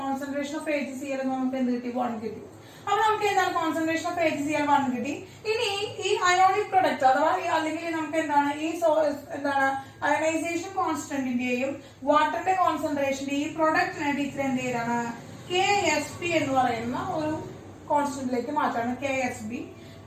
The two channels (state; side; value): identical; both; correlation 1.00